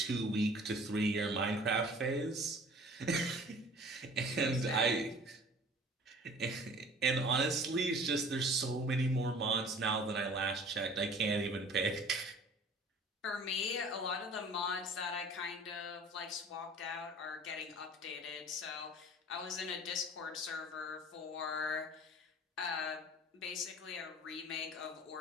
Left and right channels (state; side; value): normal; both; correlation 0.47